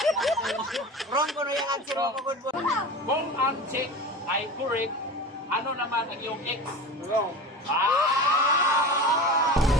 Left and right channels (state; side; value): normal; both; correlation 0.32